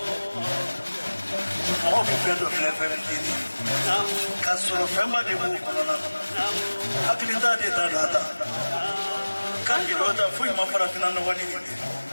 mɔgɔ bɛ fɛn dɔ filɛ fɛn fitinin ka sɔrɔ fɛnba de b'o kɔnɔna na hakilita de t'a da ta kan k'i dɔ ta foyi ma farafinna nɔgɔ ni nin tɛ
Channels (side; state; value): both; inverted; correlation -1.00